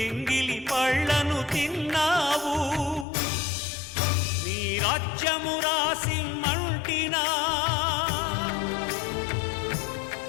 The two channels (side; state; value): right; drops out; at 3.1 s